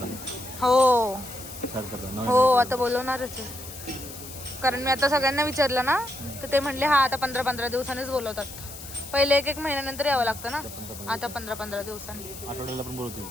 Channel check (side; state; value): left; noise; hiss, 13 dB below the sound